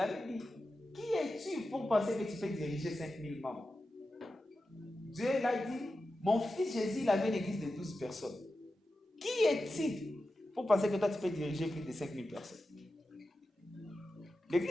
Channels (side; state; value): both; normal; correlation 0.92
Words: dit, qui es-tu pour penser que tu peux diriger 5000 membres? Dieu l'a dit, Mon fils Jésus, il avait une église de 12 personnes. Qui est-il pour penser que toi, tu peux diriger plus de 5000 personnes?